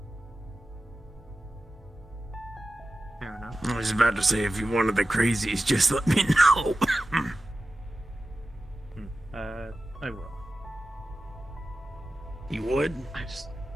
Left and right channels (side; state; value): both; normal; correlation 0.94